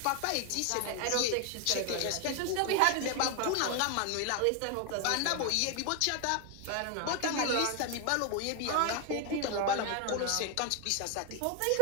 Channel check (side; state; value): both; different; correlation 0.00